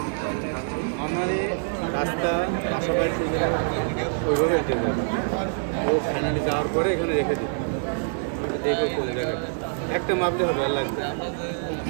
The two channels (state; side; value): silent; left; digital silence